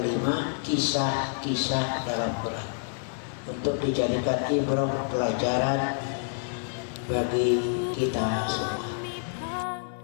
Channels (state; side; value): silent; right; 57 dB below the other